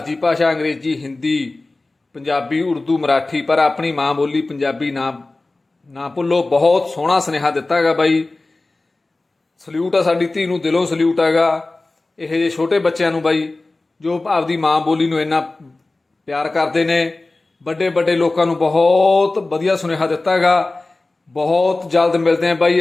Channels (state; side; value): quieter; right; 3.1 dB